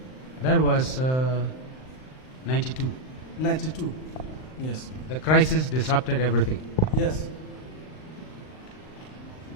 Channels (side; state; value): right; late; 39 ms